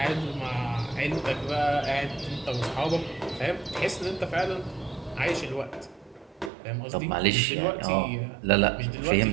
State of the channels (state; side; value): drops out; left; at 6.5 s